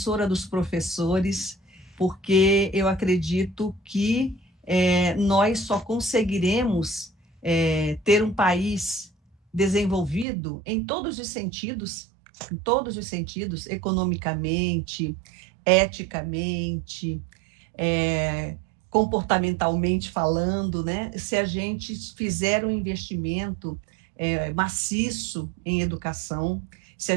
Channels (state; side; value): drops out; left; at 10.2 s